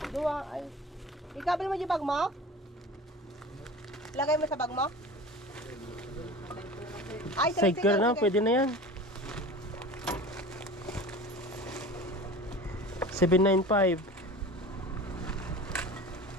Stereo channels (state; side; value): normal; both; correlation 0.37